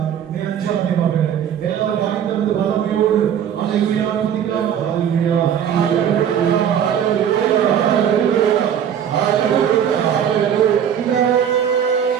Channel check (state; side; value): quieter; left; 8.9 dB